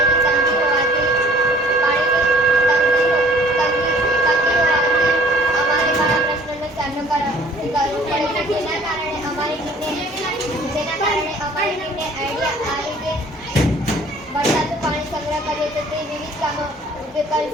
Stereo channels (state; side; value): normal; both; correlation 0.54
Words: તંગી હોવાથી અમારે ઘણા પ્રશ્નોનો સામનો કરવો પડે છે. જેના કારણે અમારી ટીમને આઈડિયા આવી કે વરસાદનું પાણી સંગ્રહ કરીએ તો તે વિવિધ કામો ઉપયોગ કરી